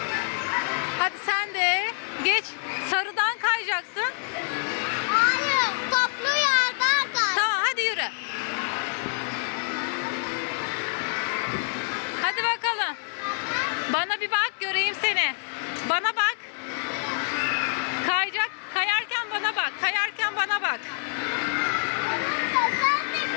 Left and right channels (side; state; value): right; silent; 57 dB below the other